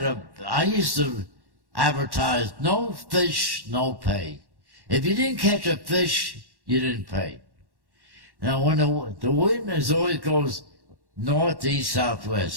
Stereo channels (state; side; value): late; left; 1.1 ms